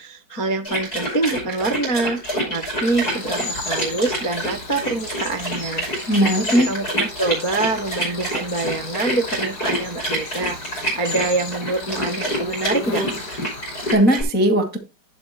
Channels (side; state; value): right; late; 4.7 ms